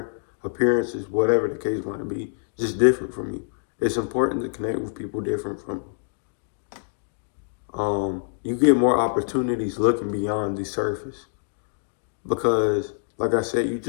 appearances, whatever the case might be, just different from you. It's important to connect with people different from you. You get more opportunities looking beyond the surface, because, like I said, you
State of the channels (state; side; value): silent; right; digital silence